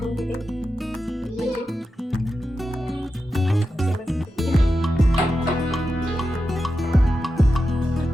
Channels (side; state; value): both; normal; correlation 0.90